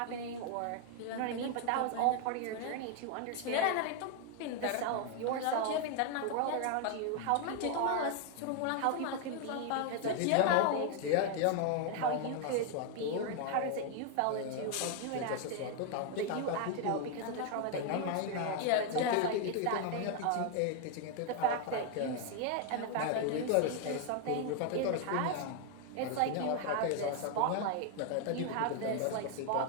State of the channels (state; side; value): different; both; correlation 0.00